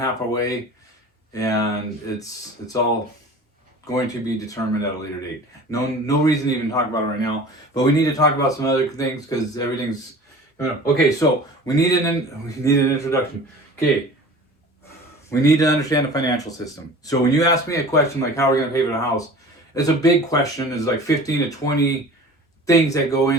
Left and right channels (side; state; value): both; normal; correlation 0.41